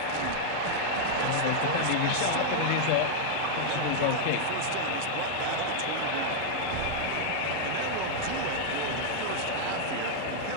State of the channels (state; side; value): different; both; correlation -0.01